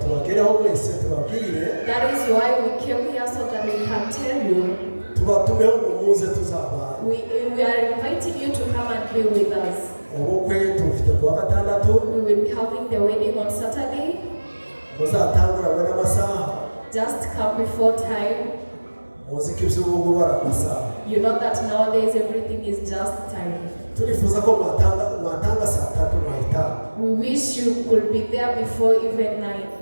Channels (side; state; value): both; inverted; correlation -1.00